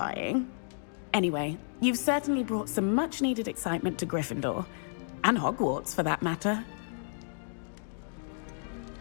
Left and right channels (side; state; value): right; silent; digital silence